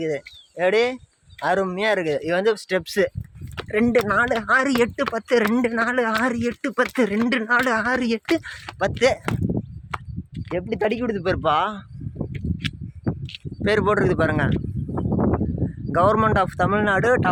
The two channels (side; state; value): both; identical; correlation 1.00